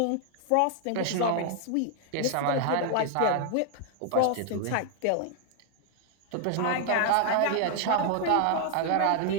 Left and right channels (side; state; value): both; different; correlation 0.00